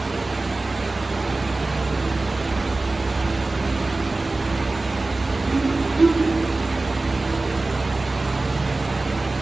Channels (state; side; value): quieter; left; 3.2 dB